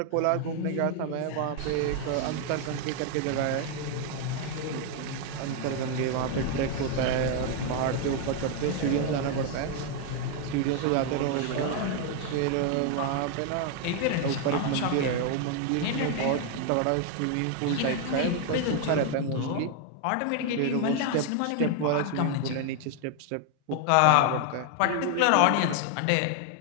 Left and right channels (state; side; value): different; both; correlation 0.00